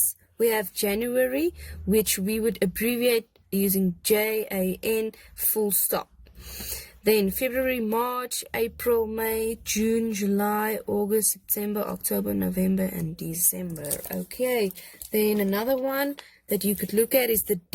we have January, which we would abbreviate using JAN full stop. Then February, March, April, May, June, July, August, September, October, November, and December. Okay, then another one that you could look at is the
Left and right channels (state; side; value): identical; both; correlation 1.00